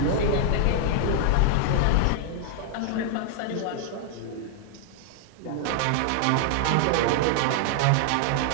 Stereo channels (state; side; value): different; both; correlation 0.00